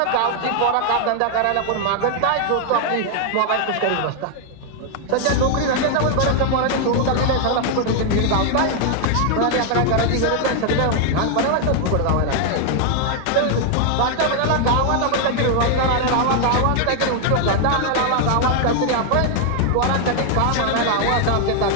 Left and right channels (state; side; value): different; both; correlation 0.00